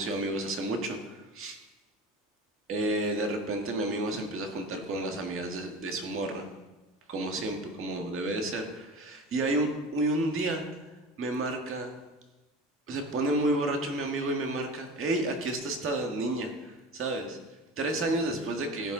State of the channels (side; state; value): both; normal; correlation 0.34